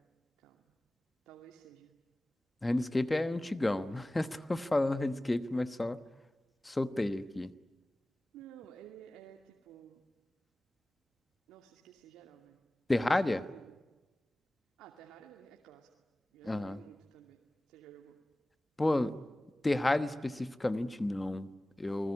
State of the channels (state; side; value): normal; both; correlation 0.98